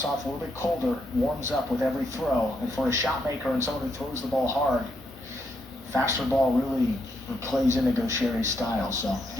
off a little bit colder, warms up with every throw. And for a shot maker and someone who throws the ball hard, faster ball really plays into Gaucheri's style. So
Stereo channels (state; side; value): normal; both; correlation 0.78